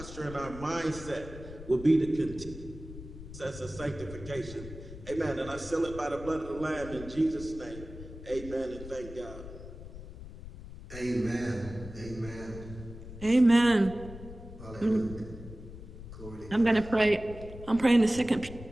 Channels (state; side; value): noise; left; rumble, 13 dB below the sound